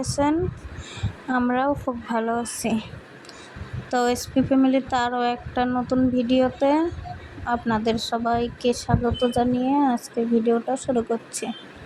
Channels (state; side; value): identical; both; correlation 1.00